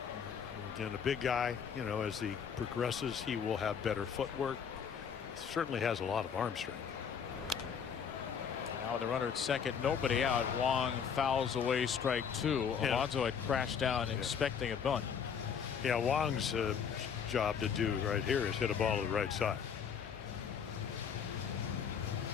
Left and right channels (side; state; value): right; quieter; 7.2 dB